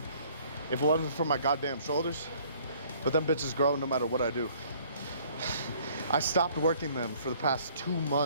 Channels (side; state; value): both; inverted; correlation -0.58